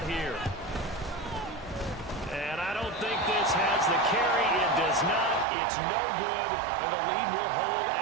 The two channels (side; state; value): left; drops out; at 5.5 s